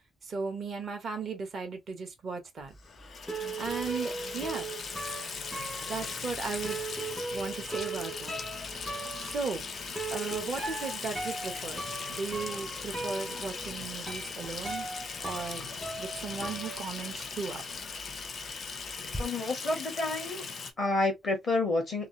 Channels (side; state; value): both; normal; correlation 0.73